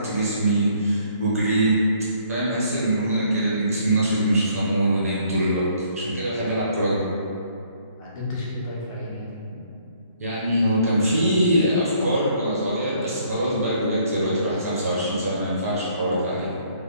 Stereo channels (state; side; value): inverted; both; correlation -0.64